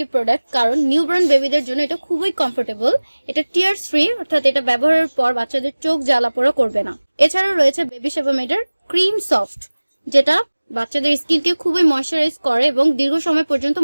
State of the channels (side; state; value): both; inverted; correlation -1.00